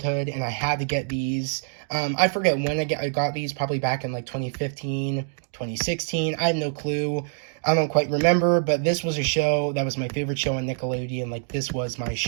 and I had to get these. I forget when I got these, probably back in, like, 2015, 2016. I have no clue. I don't quite remember, but this was a show that was my favorite show on Nickelodeon. Like, this was my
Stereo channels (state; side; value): silent; left; digital silence